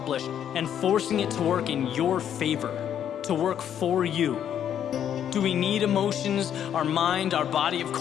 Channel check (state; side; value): quieter; right; 9.6 dB